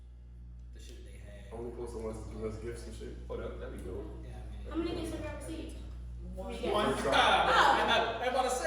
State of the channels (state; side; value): identical; both; correlation 1.00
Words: the shit they had. Only post the ones that give us gifts and shit. Oh, that'd be dope. Yeah, How many gifts have you received? One. I'm I'm about to